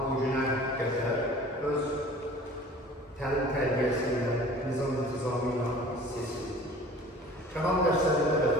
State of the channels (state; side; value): normal; both; correlation 0.46